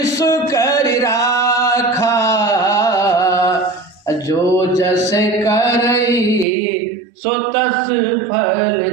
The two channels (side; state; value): left; drops out; at 6.5 s